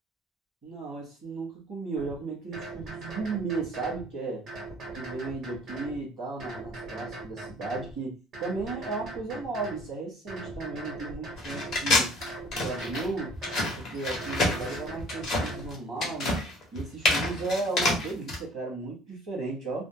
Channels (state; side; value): normal; both; correlation 0.52